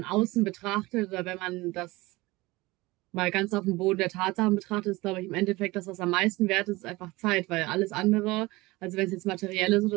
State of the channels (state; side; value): quieter; left; 21.3 dB